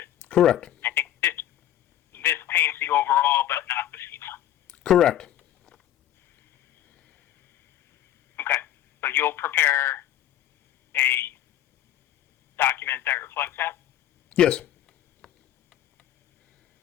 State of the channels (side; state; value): right; quieter; 11.9 dB